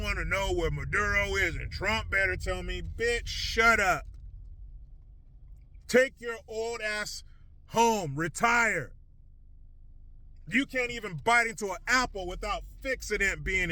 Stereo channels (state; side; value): identical; both; correlation 1.00